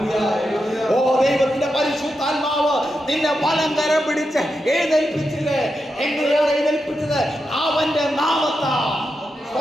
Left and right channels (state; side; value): normal; both; correlation 0.87